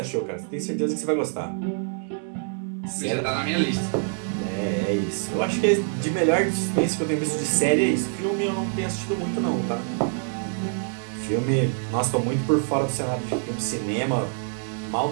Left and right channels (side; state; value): left; silent; 61 dB below the other